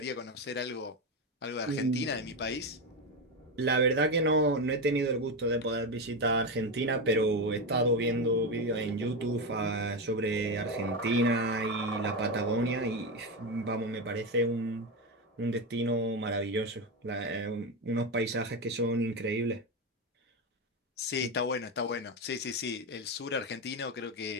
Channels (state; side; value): normal; both; correlation 0.13